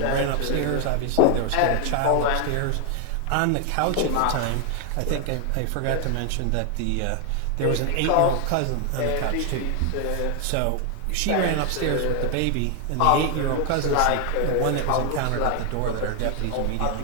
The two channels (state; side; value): different; both; correlation 0.00